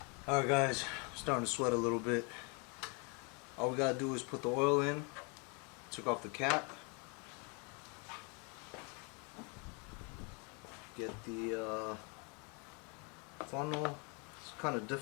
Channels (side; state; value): right; quieter; 33.7 dB